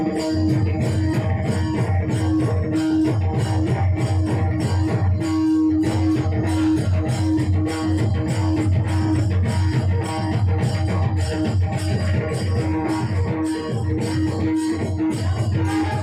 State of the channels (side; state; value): both; identical; correlation 1.00